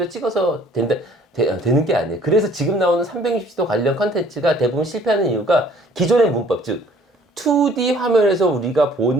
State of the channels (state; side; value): normal; both; correlation 0.56